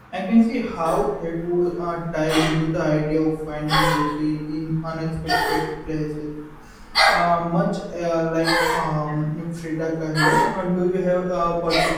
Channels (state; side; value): identical; both; correlation 1.00